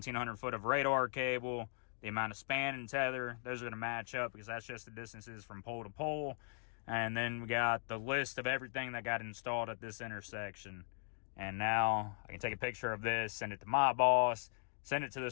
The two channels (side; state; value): right; silent; digital silence